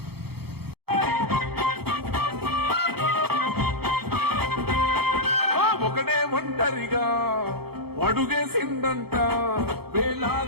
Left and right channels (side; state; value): left; late; 0.96 ms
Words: ఒకడే ఒంటరిగా అడుగేసిందంట,